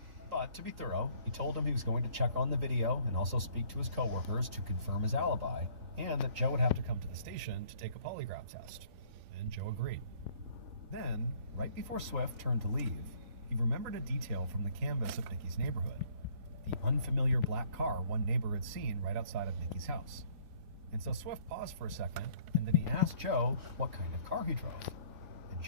But to be thorough, he told him he was going to check on the video and also speak to his coworkers to confirm his alibi, and that Joe would have to come to the station to take a polygraph test. And Joe agreed. Then, right before Swift turned to leave, he remembered a detail from the canvas of Nikki's neighborhood. The unfamiliar black car one neighbor had seen right outside of Nikki's house. And so Swift paused for a second, and then he asked Joe what kind of car he drove. And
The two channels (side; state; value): left; late; 3.4 ms